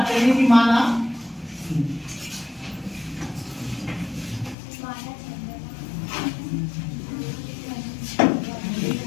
करेंगे कि माना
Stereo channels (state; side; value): drops out; right; at 4.5 s